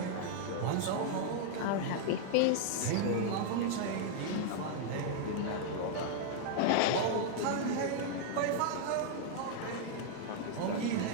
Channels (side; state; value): both; different; correlation -0.01